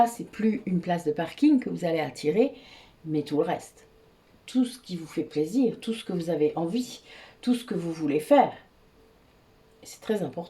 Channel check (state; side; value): identical; both; correlation 1.00